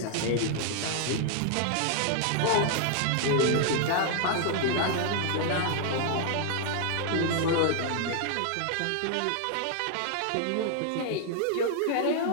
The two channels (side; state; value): both; different; correlation 0.00